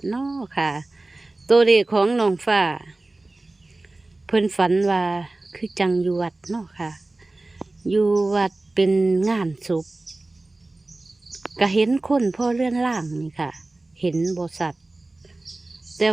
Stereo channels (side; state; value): left; quieter; 3.0 dB